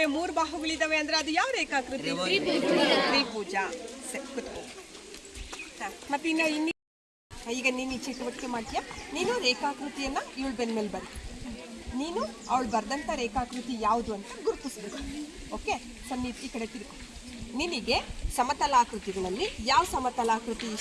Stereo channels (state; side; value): identical; both; correlation 1.00